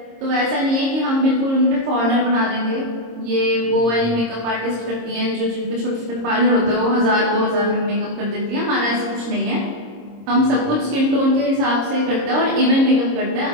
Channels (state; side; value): late; left; 26 ms